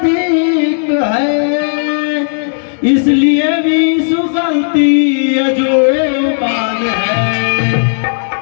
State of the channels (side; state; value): right; silent; digital silence